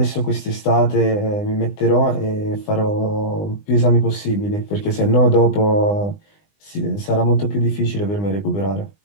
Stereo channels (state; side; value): late; right; 20 ms